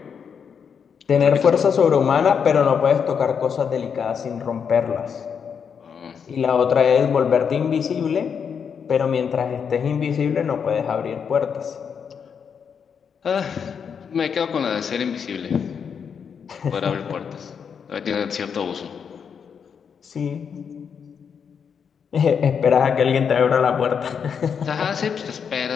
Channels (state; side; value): quieter; right; 6.9 dB